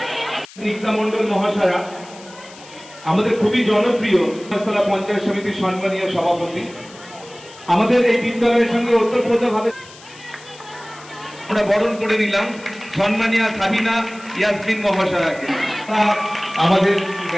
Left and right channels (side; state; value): left; noise; hiss, 20 dB below the sound